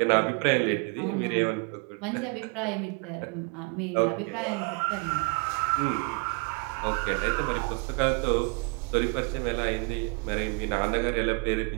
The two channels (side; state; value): left; quieter; 33.3 dB